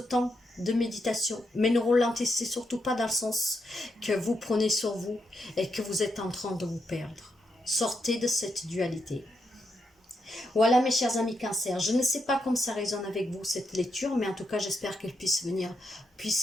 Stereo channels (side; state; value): both; normal; correlation 0.82